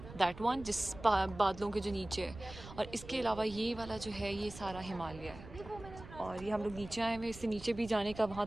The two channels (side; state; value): right; noise; rumble, 15 dB below the sound